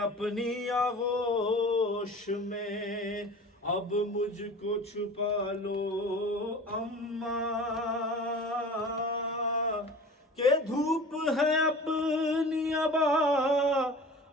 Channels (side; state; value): both; normal; correlation 0.39